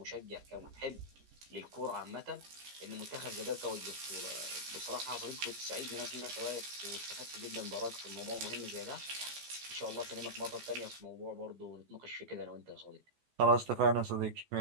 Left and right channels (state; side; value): late; left; 14 ms